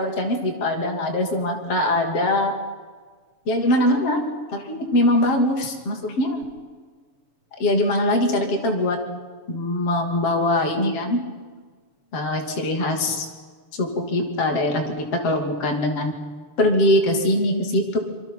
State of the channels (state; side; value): late; right; 7.1 ms